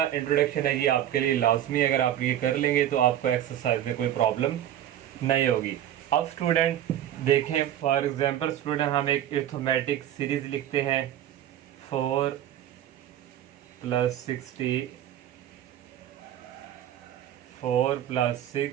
इंट्रोडक्शन है ये आपके लिए लाजमी, अगर आप ये कर लेंगे तो आपको एक्सरसाइज में कोई प्रॉब्लम नहीं होगी। अब स्टूडेंट देखें, फॉर एग्जांपल स्टूडेंट हम एक अरिथमेटिक सीरीज लिखते हैं 4 + 60, 4 +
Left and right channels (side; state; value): left; quieter; 11.4 dB